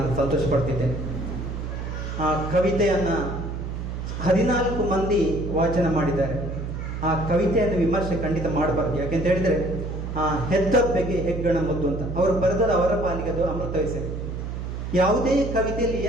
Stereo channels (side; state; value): right; noise; hum, 5 dB below the sound